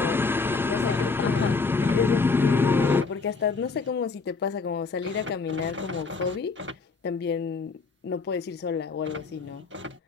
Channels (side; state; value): right; quieter; 4.3 dB